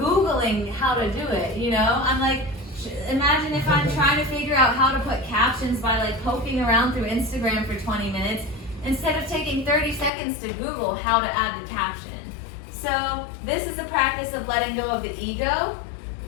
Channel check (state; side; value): drops out; right; at 10.1 s